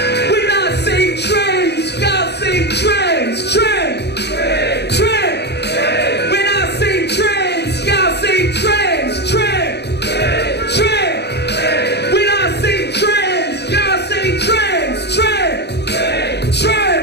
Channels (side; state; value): right; late; 0.49 ms